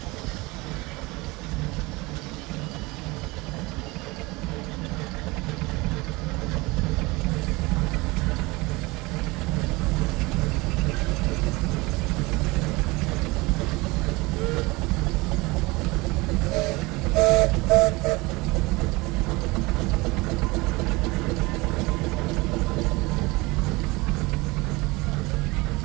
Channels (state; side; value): quieter; left; 23.2 dB